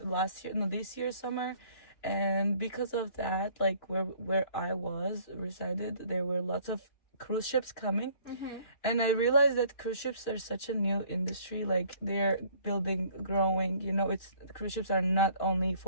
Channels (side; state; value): right; late; 2.9 ms